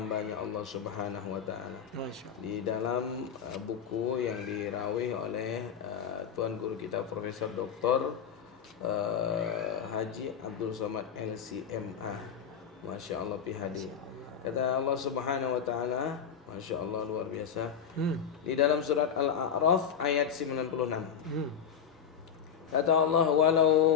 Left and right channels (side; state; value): right; quieter; 7.7 dB